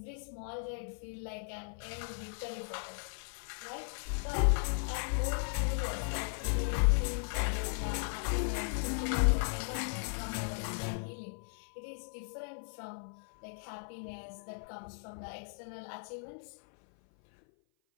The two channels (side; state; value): right; silent; 53 dB below the other